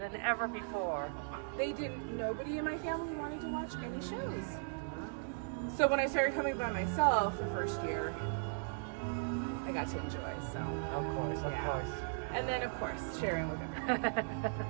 ever before. Nobody in my family wanted to watch any shows. So when I started coming by myself the first year, I got to enjoy, so. Of course. And then of course, sharing with everybody.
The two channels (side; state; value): left; silent; digital silence